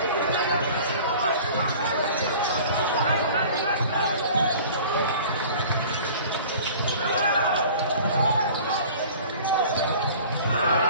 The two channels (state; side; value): inverted; both; correlation -0.44